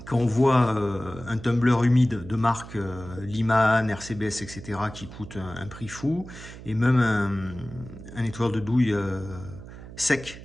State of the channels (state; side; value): noise; right; hum, 15 dB below the sound